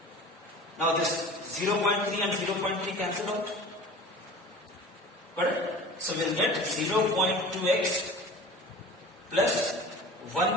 Now this 0.3 and 0.3 cancel out. Correct? So we'll get 0.2x plus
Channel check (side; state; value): both; normal; correlation 0.39